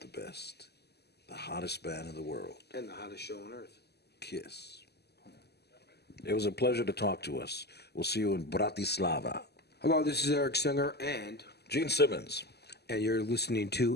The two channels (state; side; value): late; right; 0.47 ms